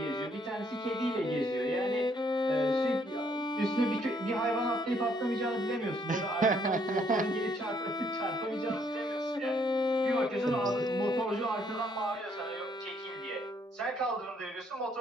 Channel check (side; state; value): both; normal; correlation 0.69